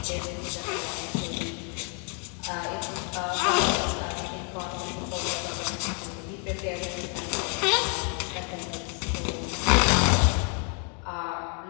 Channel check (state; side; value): quieter; right; 39.6 dB